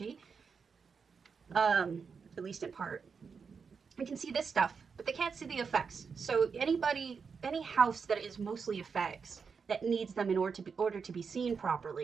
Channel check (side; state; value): left; quieter; 5.7 dB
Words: at least in part. They can see this stuff, but they can't see the effects. So any house that is mostly effects that needs them in order to be seen